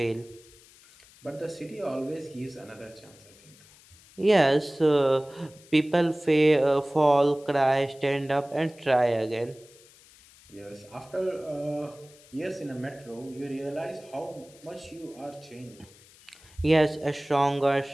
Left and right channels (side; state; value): left; noise; hiss, 25 dB below the sound